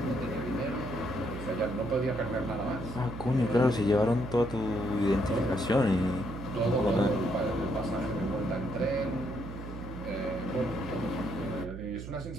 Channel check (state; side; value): noise; right; hum, 10 dB below the sound